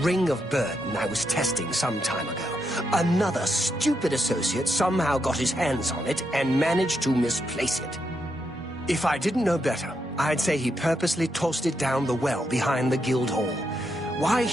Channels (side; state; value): both; normal; correlation 0.81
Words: of burden I was testing some time ago. Another stupid associate somehow got his hands on it and managed to misplace it. If I didn't know better, I'd say he purposely tossed it down the well behind the guild hall. Why